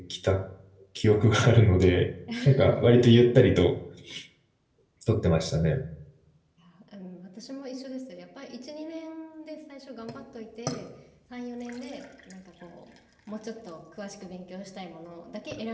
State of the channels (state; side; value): identical; both; correlation 1.00